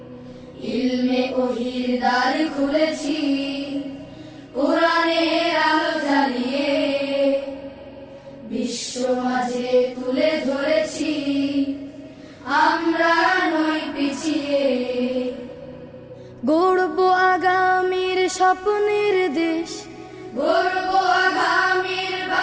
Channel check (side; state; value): both; identical; correlation 1.00